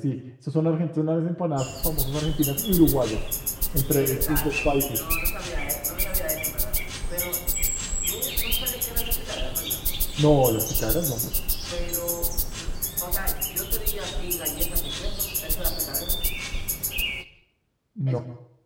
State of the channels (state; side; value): identical; both; correlation 1.00